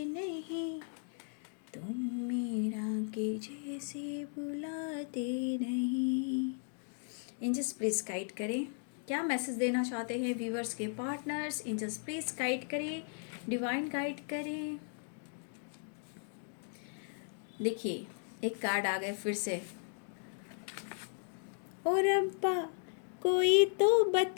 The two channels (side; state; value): right; silent; 54 dB below the other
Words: नहीं, तुम मीरा के जैसे बुलाते नहीं। एंजल्स प्लीज गाइड करें, क्या मैसेज देना चाहते हैं व्यूवर्स के पार्टनर्स। एंजल्स प्लीज गाइड करें, डिवाइन गाइड करें। देखिए एक कार्ड आ गए फिर से। और अब्बा कोई तो